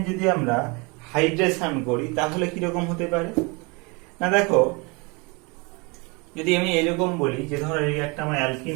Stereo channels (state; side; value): quieter; left; 29.0 dB